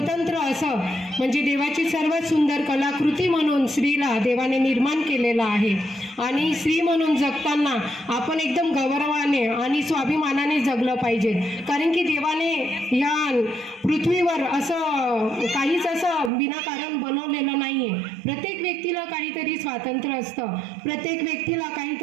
असं म्हणजे देवाची सर्वात सुंदर कलाकृती म्हणून स्त्रीला देवाने निर्माण केलेला आहे. आणि स्त्री म्हणून जगताना आपण एकदम गौरवाने आणि स्वाभिमानाने जगलं पाहिजे, कारण की देवाने ह्या पृथ्वीवर असं काहीच असं विनाकारण बनवलेलं नाही आहे. प्रत्येक व्यक्तीला काहीतरी स्वातंत्र्य असतं, प्रत्येक व्यक्तीला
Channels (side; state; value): left; drops out; at 16.3 s